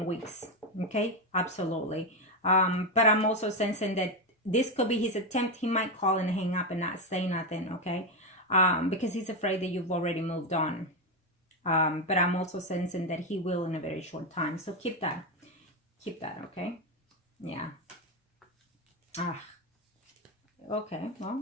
weeks. Okay, absolutely. But I'm also sensing that this could be his attempt. He might call and hang up and not say nothing, okay? Because he's afraid that you've already moved on. But I'm also sensing that he will in a very short time. So keep that, okay? Yeah. Okay, well,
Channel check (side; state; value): both; normal; correlation 0.09